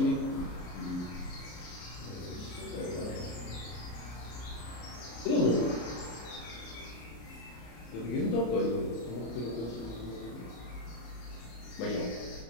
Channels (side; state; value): right; late; 33 ms